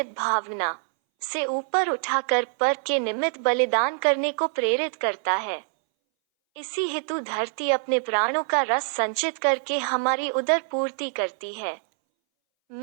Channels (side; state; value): left; silent; 61 dB below the other